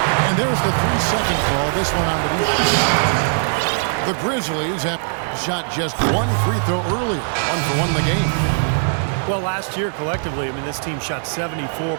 And there's the 3-second call. This one on the defense. The Grizzlies have shot just 1 free throw earlier. 1 for 1 in the game. Well, last year collectively, I mean, this team shot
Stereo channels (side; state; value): left; silent; digital silence